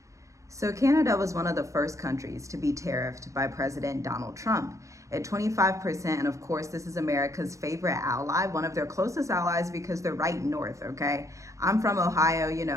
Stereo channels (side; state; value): left; late; 0.15 ms